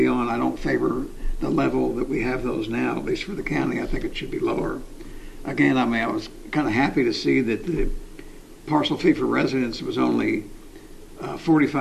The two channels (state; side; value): identical; both; correlation 1.00